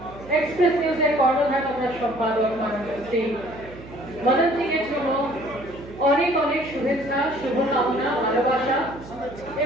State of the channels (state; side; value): noise; right; hum, 17 dB below the sound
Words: এক্সপ্রেস নিউজের কর্ণধার আমরা সম্পাদক শ্রী মদন সিং এর জন্য অনেক অনেক শুভেচ্ছা, শুভকামনা, ভালোবাসা